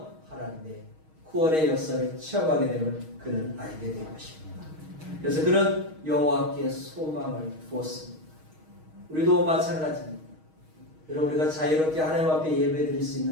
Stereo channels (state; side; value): late; left; 6.4 ms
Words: 하나님의 구원의 역사를 체험하게 되면 그는 알게 될 것입니다. 그래서 그는 여호와께 소망을 두었습니다. 우리도 마찬가지입니다. 여러분, 우리가 자유롭게 하나님 앞에 예배드릴 수